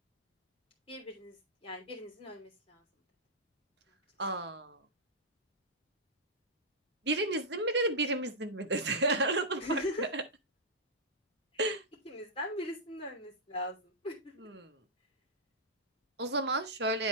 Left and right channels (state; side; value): normal; both; correlation -0.11